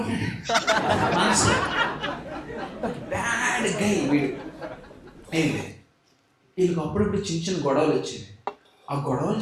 మనసు. బ్యాడ్ గై వీడు. వీళ్ళకి అప్పుడప్పుడు చిన్న చిన్న గొడవలు వచ్చేవి. ఆ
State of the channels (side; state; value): both; identical; correlation 1.00